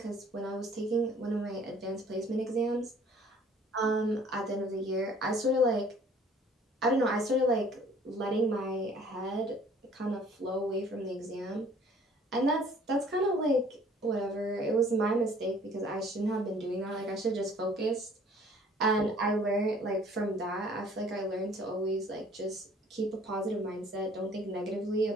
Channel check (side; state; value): both; normal; correlation 0.55